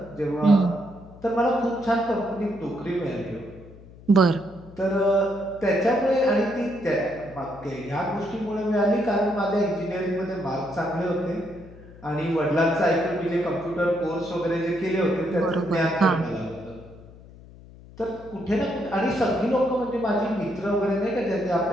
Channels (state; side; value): noise; left; hum, 20 dB below the sound